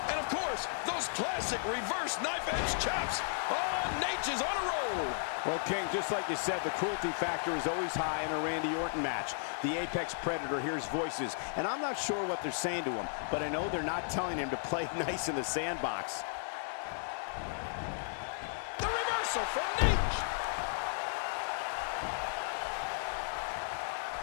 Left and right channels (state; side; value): silent; right; digital silence